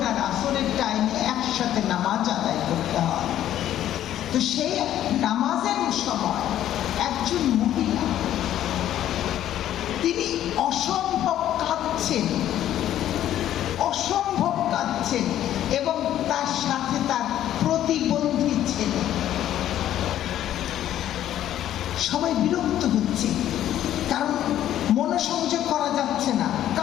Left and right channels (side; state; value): right; quieter; 11.9 dB